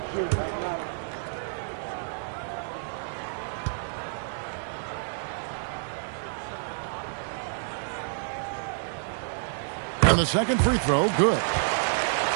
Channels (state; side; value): silent; left; digital silence